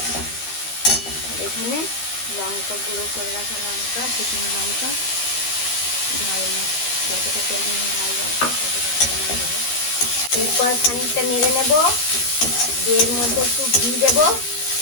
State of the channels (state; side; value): late; right; 13 ms